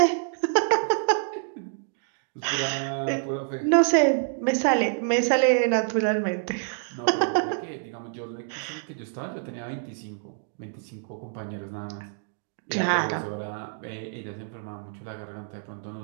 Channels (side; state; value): left; silent; digital silence